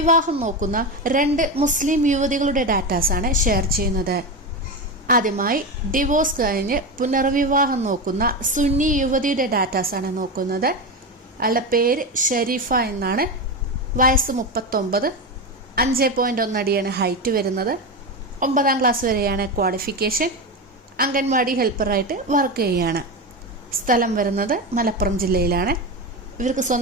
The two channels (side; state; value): both; normal; correlation 0.18